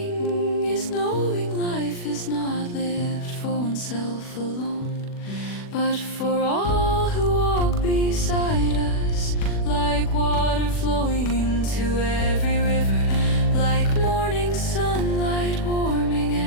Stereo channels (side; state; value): right; late; 40 ms